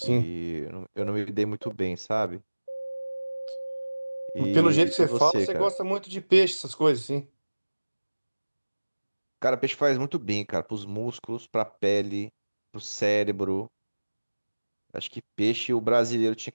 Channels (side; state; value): both; inverted; correlation -1.00